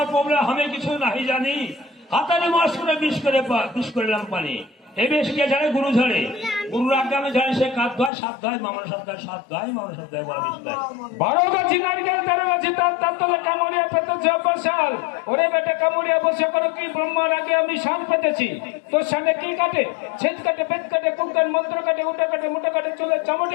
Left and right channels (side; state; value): right; drops out; at 8.1 s